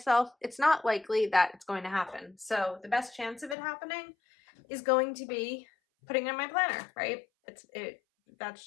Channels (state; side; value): drops out; right; at 3.6 s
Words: it's not likely that it's going to happen. So the best chance of it happening is going to be putting it in my planner, right? That's